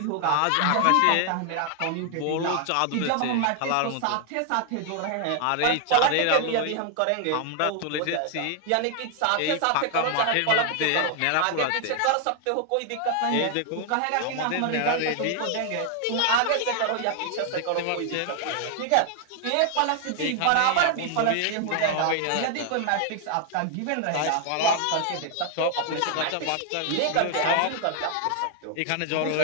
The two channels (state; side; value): different; both; correlation 0.00